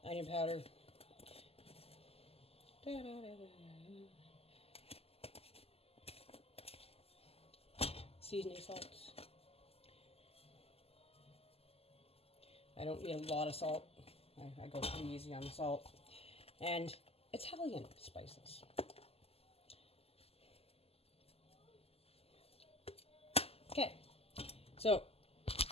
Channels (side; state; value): right; late; 0.29 ms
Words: Onion powder. Seasoning salts. I don't need a lot of salt. I go pretty easy on the salt. And Italian spices. Okay, so